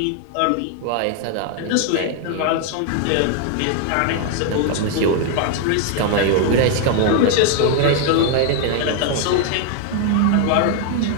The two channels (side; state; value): both; different; correlation 0.00